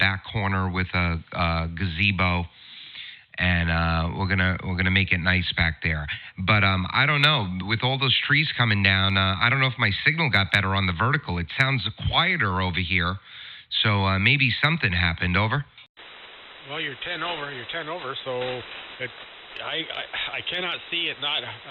corner with a gazebo, and we're gonna make it nice back there. But I don't know. With all those trees coming down, I don't know if my signal got better on the vertical. It sounds quieter over here. So maybe something happened. Over. Well, you're 10 over, so I cannot see it not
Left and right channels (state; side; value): identical; both; correlation 1.00